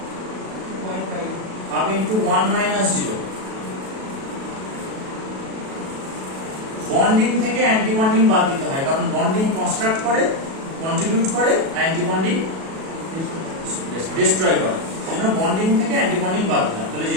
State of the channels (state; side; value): late; left; 37 ms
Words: half into 1 minus 0। Bonding থেকে অ্যান্টি বন্ডিং বাদ দিতে হয়, কারণ বন্ডিং কনস্ট্রাক্ট করে, কন্ট্রিবিউট করে, অ্যান্টি বন্ডিং ডিস্ট্রয় করে। সেজন্য বন্ডিং থেকে অ্যান্টি বন্ডিং বাদ দিলাম, তাহলে